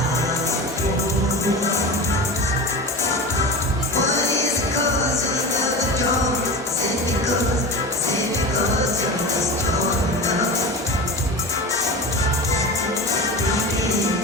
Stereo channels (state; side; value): normal; both; correlation 0.28